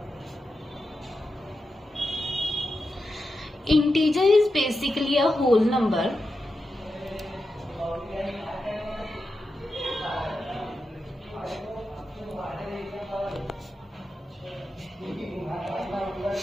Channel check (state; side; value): normal; both; correlation 0.89